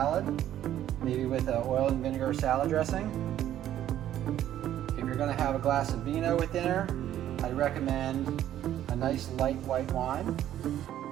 maybe with an oil and vinegar salad dressing. If you're going to have a glass of vino with dinner, I'd recommend a nice light white wine,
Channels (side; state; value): left; quieter; 11.8 dB